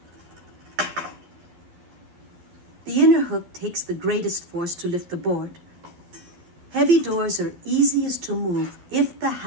The inner hook takes the greatest force to lift the board. Heavy doors are easiest to move if the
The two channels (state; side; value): late; left; 12 ms